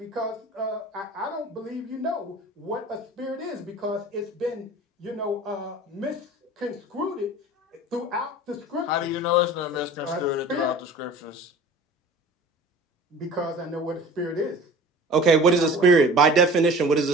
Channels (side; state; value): both; normal; correlation 0.41